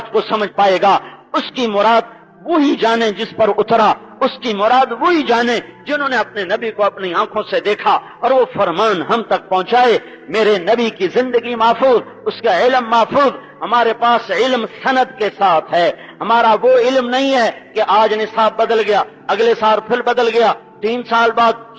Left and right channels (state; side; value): identical; both; correlation 1.00